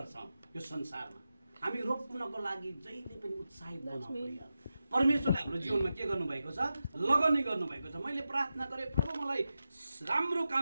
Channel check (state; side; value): inverted; both; correlation -0.91